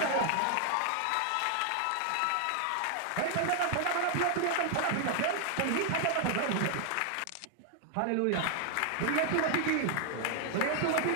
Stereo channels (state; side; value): different; both; correlation 0.00